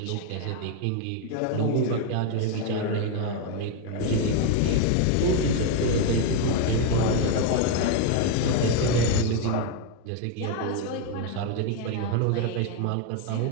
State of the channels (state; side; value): different; both; correlation 0.01